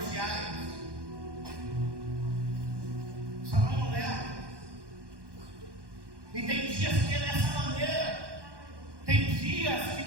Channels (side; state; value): left; late; 1.1 ms